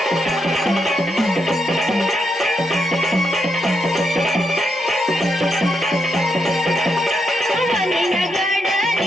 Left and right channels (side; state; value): both; normal; correlation 0.81